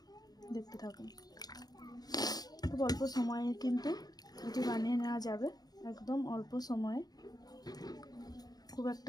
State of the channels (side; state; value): right; late; 0.19 ms